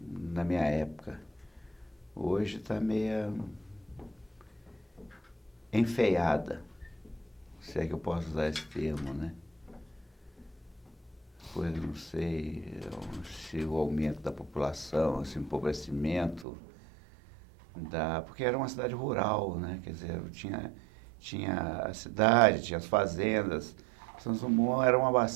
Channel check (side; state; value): left; drops out; at 16.4 s